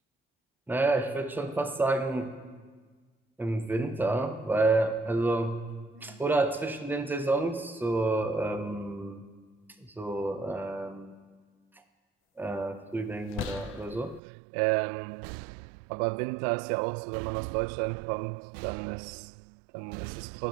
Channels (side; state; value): left; drops out; at 14.2 s